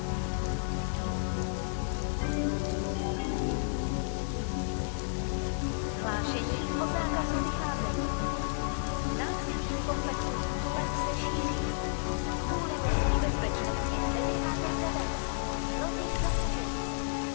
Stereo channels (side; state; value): right; silent; 57 dB below the other